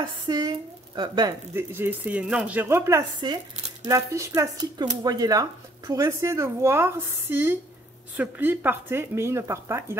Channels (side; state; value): both; normal; correlation 0.62